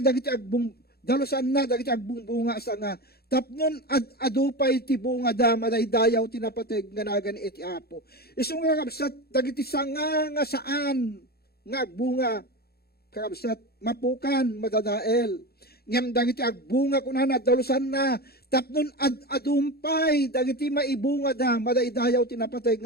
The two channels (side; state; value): right; late; 0.46 ms